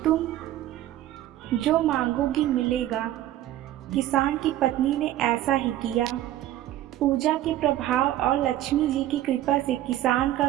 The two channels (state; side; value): quieter; left; 13.6 dB